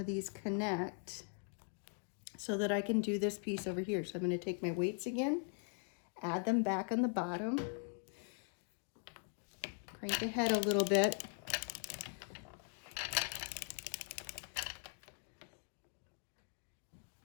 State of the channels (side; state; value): right; silent; 51 dB below the other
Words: these connect so that I can do this piece over here. So I'm going to take my weights again, add them back on the bottom, crank ahead a little bit.